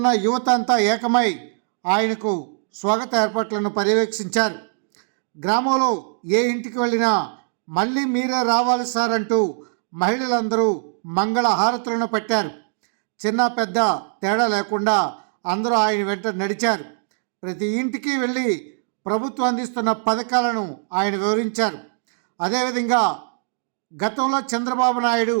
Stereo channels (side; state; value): left; silent; digital silence